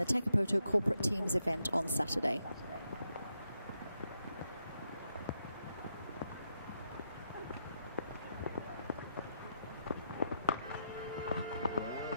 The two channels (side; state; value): both; inverted; correlation -0.81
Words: Takapoto Corporate Teams event on Saturday.